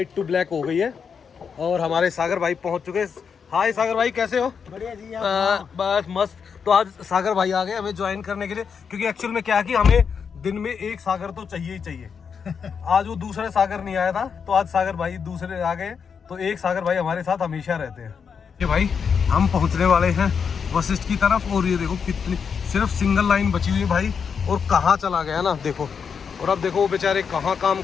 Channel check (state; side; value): quieter; right; 6.4 dB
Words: टू ब्लैक हो गई है और हमारे सागर भाई पहुंच चुके हैं। हाय सागर भाई, कैसे हो? बढ़िया जी। बस मस्त। तो आज सागर भाई आ गए हमें ज्वाइन करने के लिए, क्योंकि एक्चुअल में क्या है कि हमें दिन में एक सागर तो चाहिए ही चाहिए। आज वो दूसरे सागर नहीं आया था, तो आज सागर भाई दूसरे आ गए, तो एक सागर भाई हमारे साथ हमेशा रहते हैं। ये भाई हम पहुंचने वाले हैं वशिष्ठ की तरफ, और ये देखो कितनी सिर्फ सिंगल लाइन बची हुई है भाई, और कहाँ चला गया ना देखो। और अब देखो वो बेचारे कहाँ काम